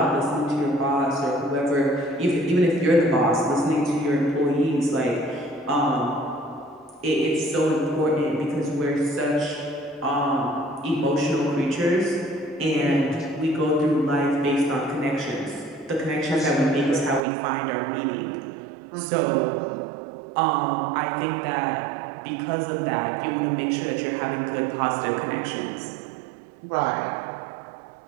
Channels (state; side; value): drops out; left; at 17.2 s